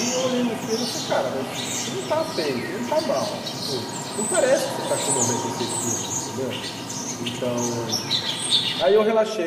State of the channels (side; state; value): both; identical; correlation 1.00